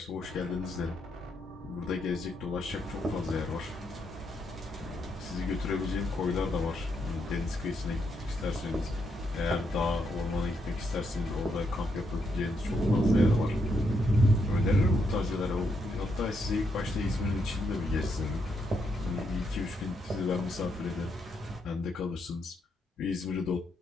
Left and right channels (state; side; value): normal; both; correlation 0.79